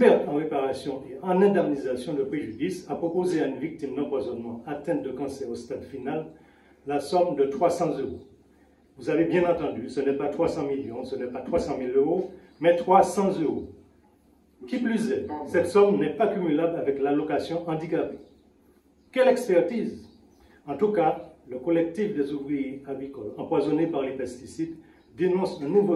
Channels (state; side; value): identical; both; correlation 1.00